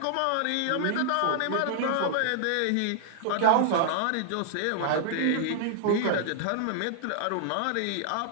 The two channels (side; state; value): both; different; correlation -0.01